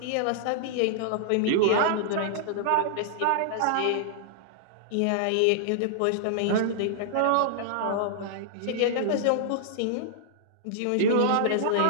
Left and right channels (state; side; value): different; both; correlation -0.01